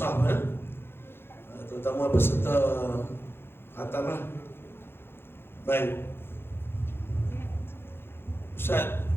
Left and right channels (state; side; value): late; right; 0.11 ms